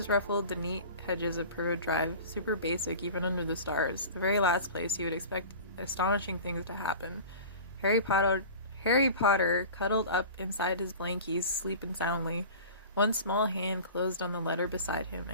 ruffled the neat hedges of Privet Drive, super basic even under the stars, the very last place you would expect astonishing things to happen. Harry Potter cuddled up inside his blankies, sleeping soundly. One small hand closed on the letter beside him,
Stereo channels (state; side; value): inverted; both; correlation -0.38